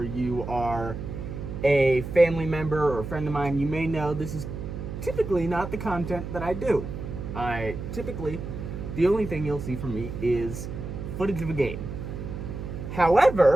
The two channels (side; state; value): right; noise; hum, 7 dB below the sound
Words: you are a family member or a friend of mine, you may know this is typically not the content that I do. The only thing you'll see from me is footage of a game.